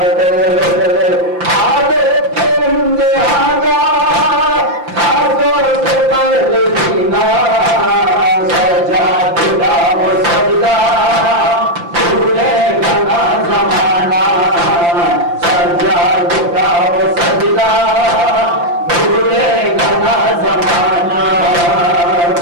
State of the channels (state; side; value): late; left; 5.8 ms